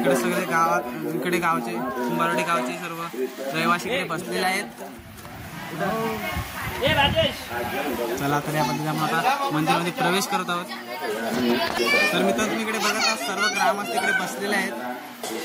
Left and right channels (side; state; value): both; identical; correlation 1.00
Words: सगळे गावात इकडे गावचे कुंभारवाडी गावचे सर्व रहिवासी इकडे बसलेले आहेत। चला तर या पद्धतीने आपण आता मंदिरामध्ये प्रवेश करत आहोत। तर मित्र तुम्ही इकडे बघत आहात सर्व ग्रामस्थ इकडे बसलेले आहेत।